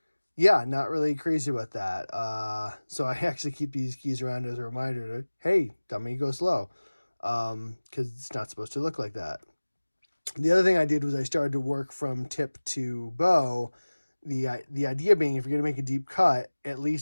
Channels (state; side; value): inverted; both; correlation -1.00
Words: yeah, not really crazy about that. So I actually keep these keys around as a reminder to, hey, dummy, go slow, because it's not supposed to look like that. The other thing I did was I started to work from tip to bow. The idea being, if you're going to make a deep cut, at